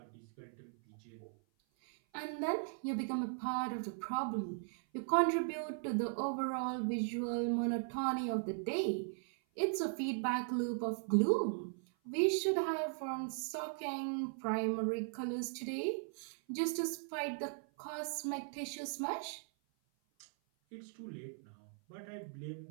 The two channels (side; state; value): left; silent; 52 dB below the other